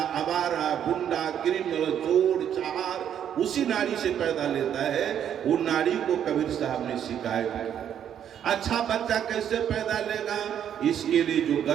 आवारा गुंडा क्रिमिनल चोर चार उसी नारी से पैदा लेता है। वो नारी को कबीर साहब ने शिकायत किया। अच्छा बच्चा कैसे पैदा लेगा? इसके लिए जो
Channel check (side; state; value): left; quieter; 9.4 dB